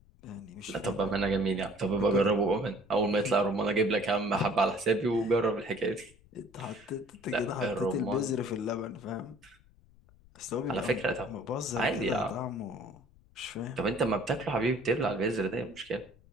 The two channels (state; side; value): noise; left; rumble, 27 dB below the sound